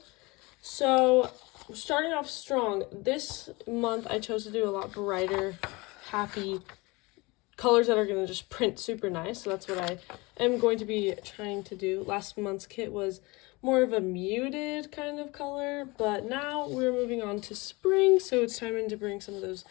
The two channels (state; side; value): quieter; right; 24.5 dB